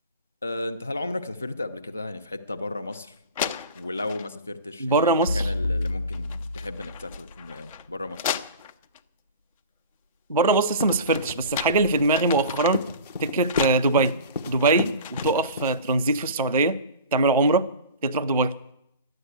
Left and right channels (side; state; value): both; inverted; correlation -0.36